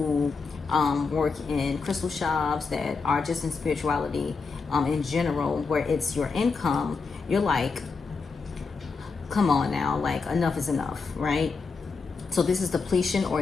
work in crystal shops that are just in spirituality in general, where it's your income, you're like, come on now, like enough is enough, right? So this is depletion or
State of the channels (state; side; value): quieter; right; 4.6 dB